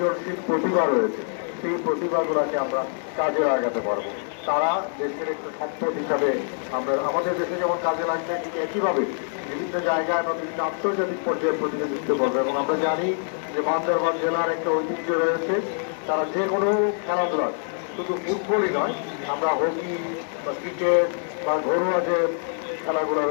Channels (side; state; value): right; silent; 62 dB below the other